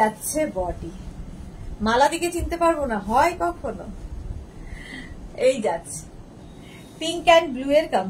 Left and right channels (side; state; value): both; identical; correlation 1.00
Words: বডি। মালাদিকে চিনতে পারবো না হয় কখনো। এই যাচ্ছে পিঙ্ক অ্যান্ড ব্লু এর